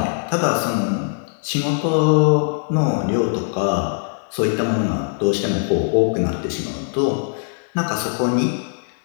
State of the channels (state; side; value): silent; right; 62 dB below the other